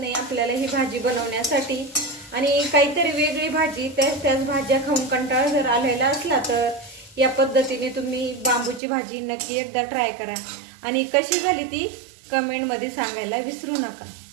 आपल्याला ही भाजी बनवण्यासाठी। आणि काहीतरी वेगळी भाजी त्याच भाज्या खाऊन कंटाळा जर आलेला असला तर या पद्धतीने तुम्ही बांबूची भाजी नक्की एकदा ट्राय करा आणि कशी झाली ती कमेंट मध्ये सांगायला विसरू नका।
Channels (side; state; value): left; drops out; at 8.8 s